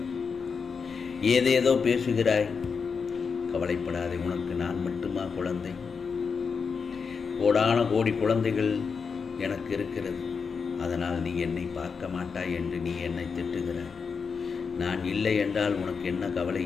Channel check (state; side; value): quieter; right; 5.6 dB